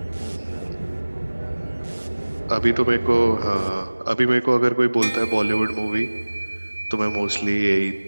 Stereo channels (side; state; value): both; inverted; correlation -1.00